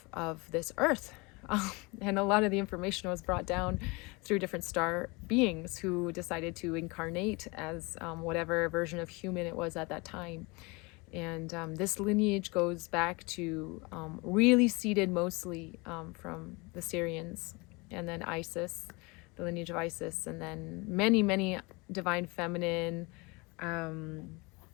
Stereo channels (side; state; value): right; quieter; 26.7 dB